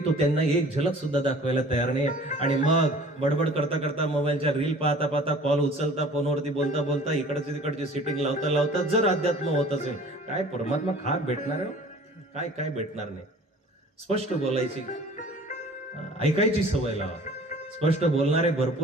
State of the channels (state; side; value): normal; both; correlation 0.47